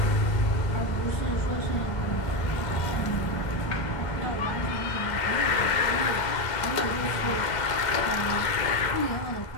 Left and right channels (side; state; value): right; late; 2.0 ms